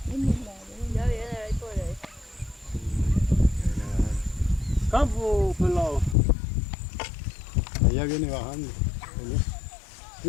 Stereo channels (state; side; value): drops out; right; at 6.2 s